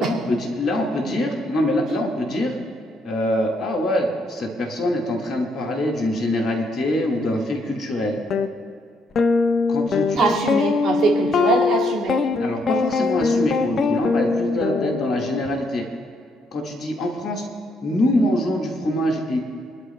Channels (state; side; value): normal; both; correlation 0.73